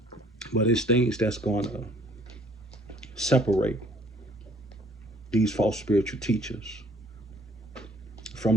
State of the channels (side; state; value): both; normal; correlation 0.59